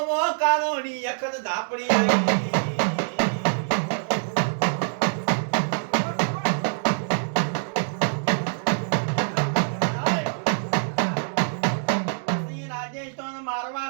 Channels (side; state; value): left; silent; digital silence